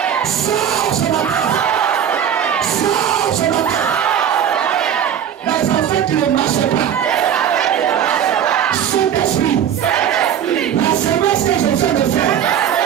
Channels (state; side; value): quieter; left; 9.2 dB